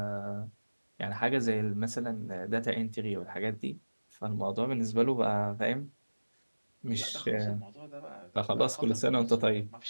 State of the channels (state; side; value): inverted; both; correlation -1.00